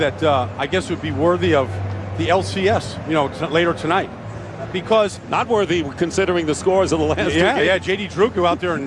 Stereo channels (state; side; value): identical; both; correlation 1.00